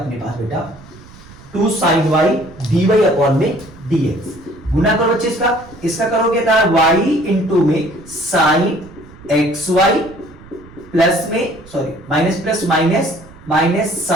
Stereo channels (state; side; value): noise; right; rumble, 21 dB below the sound